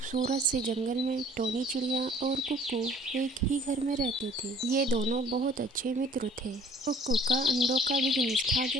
से जंगल में टोनी चिड़िया और कुक्कू एक ही घर में रहते थे। ये दोनों बहुत अच्छे मित्र थे। कुक्कू का अंडों का बिजनेस था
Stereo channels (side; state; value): both; normal; correlation 0.54